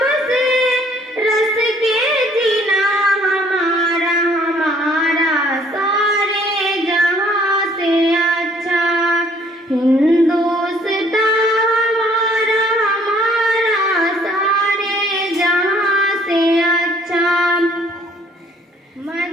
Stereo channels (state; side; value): normal; both; correlation 0.60